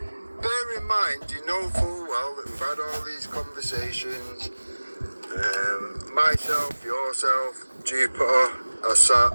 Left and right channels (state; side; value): inverted; both; correlation -1.00